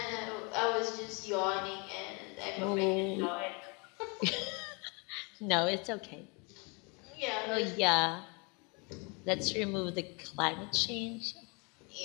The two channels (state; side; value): quieter; right; 31.9 dB